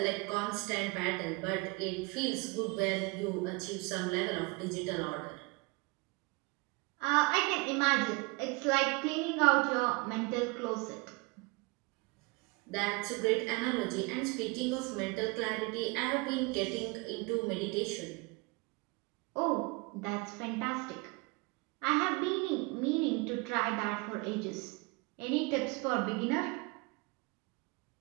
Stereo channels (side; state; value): left; quieter; 27.2 dB